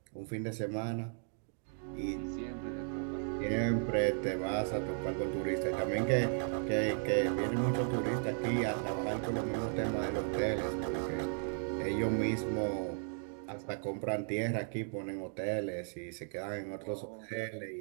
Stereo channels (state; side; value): silent; left; 54 dB below the other